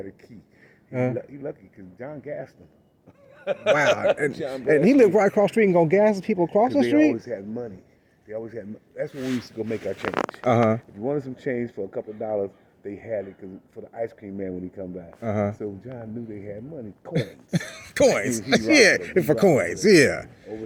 a key. He lucky because John gassed him. Wow. And he lived right across the street and gonna gas people across the They street? always had money. They always had. That's when we used to go make our change. If you wanted some change for a couple of dollars, they had it for the ice cream man when he come back. So John knew they had money, coins. Coins. For coins. Yeah. Over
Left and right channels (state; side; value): identical; both; correlation 1.00